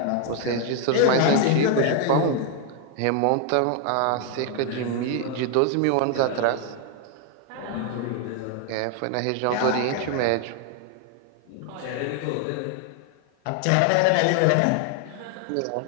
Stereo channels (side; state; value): both; different; correlation 0.00